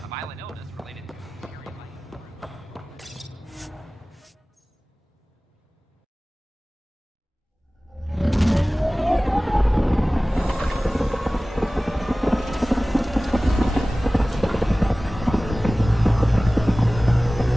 violent illness related to Harry Lane.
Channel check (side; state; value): both; normal; correlation 0.98